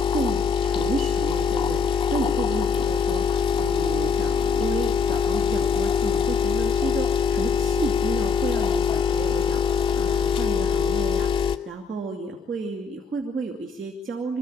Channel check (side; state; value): right; quieter; 5.3 dB